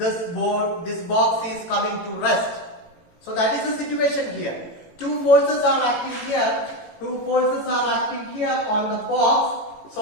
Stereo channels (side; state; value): right; late; 18 ms